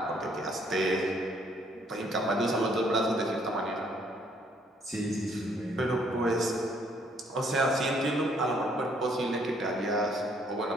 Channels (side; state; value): both; normal; correlation 0.66